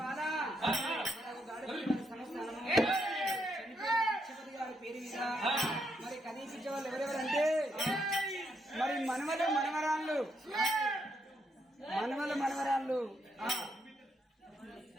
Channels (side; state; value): both; normal; correlation 0.78